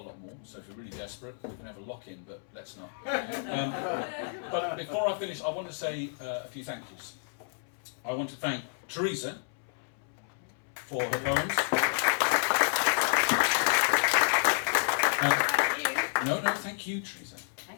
more, so if you're really desperate, we can have a lock-in, but let's not. But before I finish, I want to say a few thank yous. I want to thank Teresa for her poems. No, thank you, Teresa.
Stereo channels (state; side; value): silent; right; 57 dB below the other